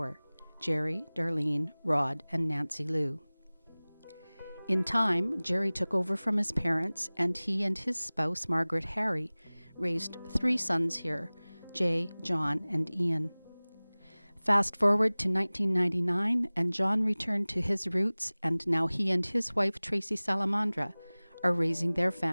Jerry, Darlene, Rod, and Nancy Lou. In time, Jerry took over from his parents, and he and his spouse, Margaret Harry, raised 3 sons here, Jay, John, and Ian. Fast forward to 1999, and John returned to his roots, and now he and his wife, Tracy Salamandra, are raising their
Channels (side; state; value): both; inverted; correlation -1.00